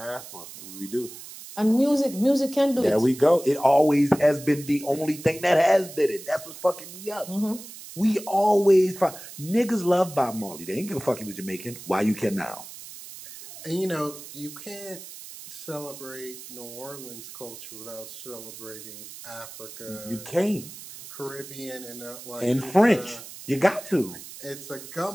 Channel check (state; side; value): noise; right; hiss, 14 dB below the sound